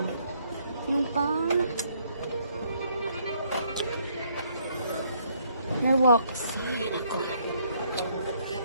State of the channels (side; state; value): both; inverted; correlation -0.68